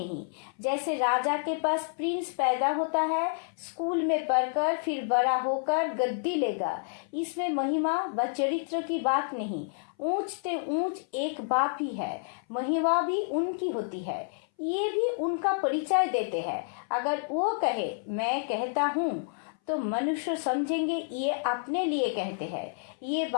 जैसे राजा के पास प्रिंस पैदा होता है, स्कूल में पढ़कर फिर बड़ा होकर गद्दी लेगा, इसमें महिमा व चरित्र की बात नहीं। ऊंच ते ऊंच एक बाप ही है, महिमा भी उनकी होती है, ये भी उनका परिचय देते हैं। अगर वो कहे मैं कहता हूँ तो मनुष्य समझेंगे ये अपने लिए कहते हैं। ये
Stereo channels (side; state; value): right; silent; 58 dB below the other